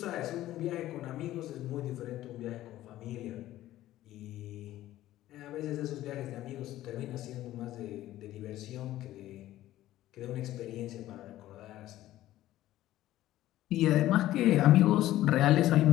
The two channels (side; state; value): right; quieter; 14.5 dB